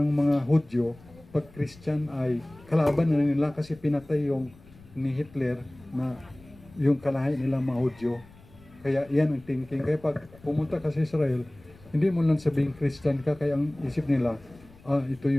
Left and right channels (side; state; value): left; noise; rumble, 24 dB below the sound